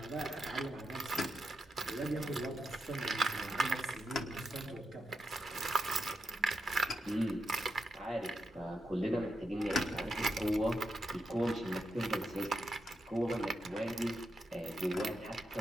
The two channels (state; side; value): normal; both; correlation 0.85